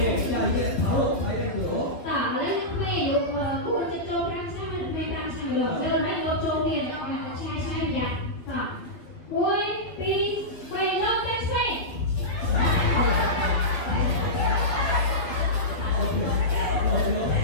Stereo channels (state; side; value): late; right; 12 ms